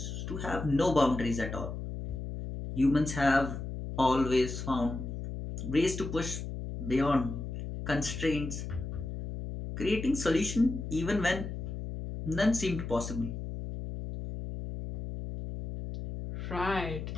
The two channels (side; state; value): left; noise; hum, 6 dB below the sound